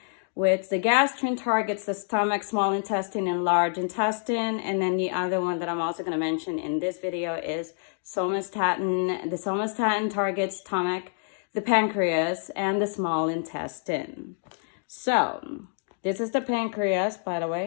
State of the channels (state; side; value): silent; right; digital silence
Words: which the gastrin targets the stomach, small intestine, and large intestine. And then the other one that I'm also going to mention in this video is somatostatin. The somatostatin targets stomach, the pancreas, and the small intestine. So this is the pancreas, by the